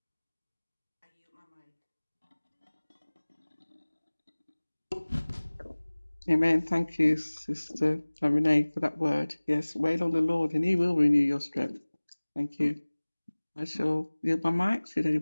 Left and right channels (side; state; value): both; inverted; correlation -1.00